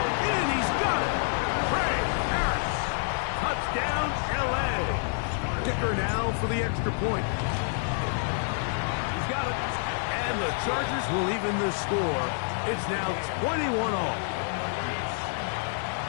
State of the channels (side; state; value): right; silent; 59 dB below the other